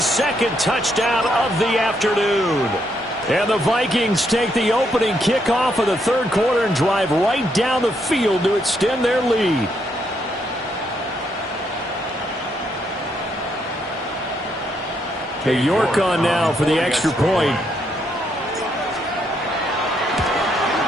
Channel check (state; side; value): normal; both; correlation 0.76